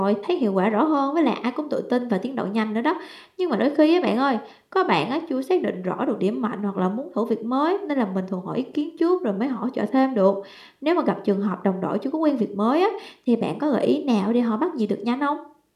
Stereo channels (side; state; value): both; identical; correlation 1.00